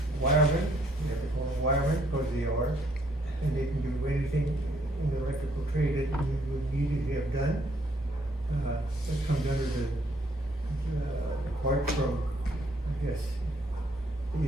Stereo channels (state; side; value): normal; both; correlation 0.67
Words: wiremen, you have to call them wiremen, because they are, and they can do anything in the electrical trade that you would need to have done. That comes under the apart from, I guess, you